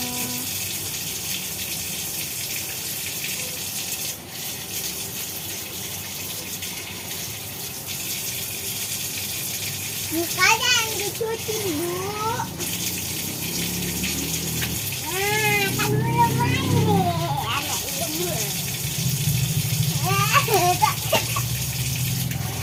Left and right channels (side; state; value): both; identical; correlation 1.00